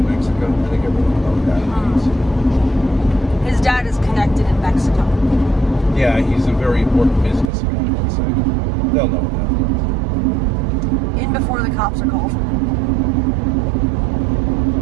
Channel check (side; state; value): left; drops out; at 7.5 s